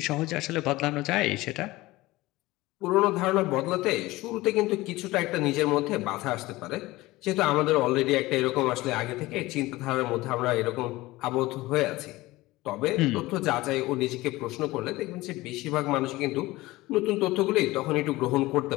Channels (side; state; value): right; quieter; 19.3 dB